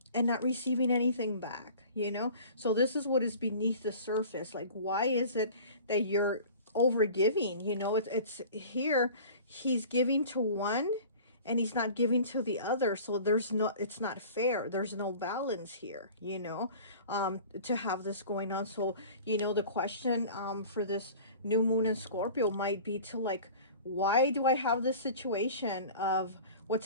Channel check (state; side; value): inverted; both; correlation -0.42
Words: and not receiving anything back, you know? So this is what is beneath the surface. Like, why is it that you're over giving? You know, it's here, he's giving to one and he's not giving to the other. So there's no, it's not fair. There's no balance here, you know, to have this going on. So, you know, the question for this new moon in Scorpio might be to like, why do I have this situation of